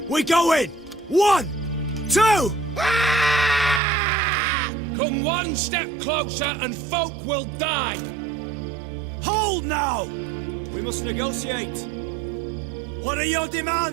we go in! 1, 2... Come one step closer and folk will die! Hold now! We must negotiate. What are your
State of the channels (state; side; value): drops out; left; at 3.8 s